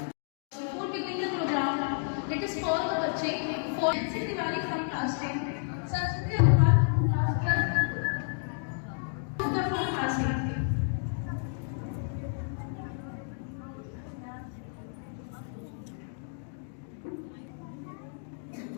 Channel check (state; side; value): silent; right; 57 dB below the other